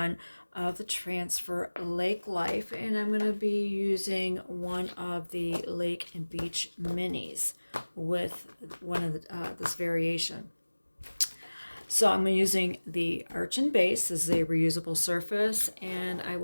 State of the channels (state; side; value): inverted; both; correlation -1.00